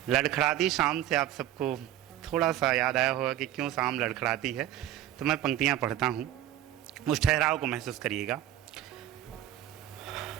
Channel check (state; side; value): quieter; left; 12.5 dB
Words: लड़खड़ाती शाम से आप सबको थोड़ा सा याद आया होगा कि क्यों शाम लड़खड़ाती है। तो मैं पंक्तियाँ पढ़ता हूँ, उस ठहराव को महसूस करिएगा।